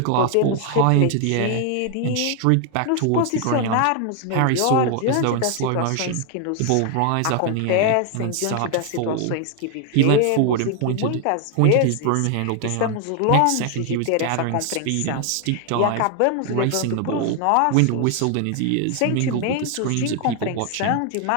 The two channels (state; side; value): different; both; correlation 0.00